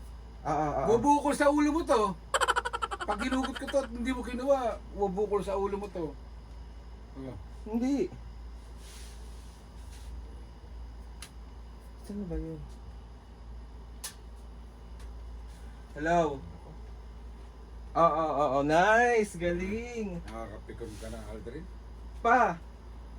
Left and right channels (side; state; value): both; identical; correlation 1.00